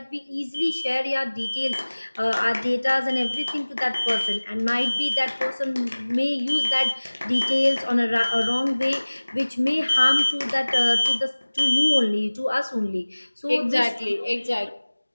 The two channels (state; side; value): inverted; both; correlation -1.00